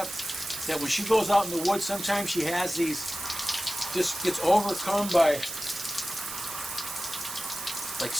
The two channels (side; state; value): right; noise; hiss, 8 dB below the sound